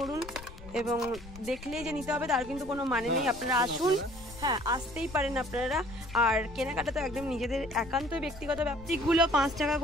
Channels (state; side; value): noise; left; rumble, 16 dB below the sound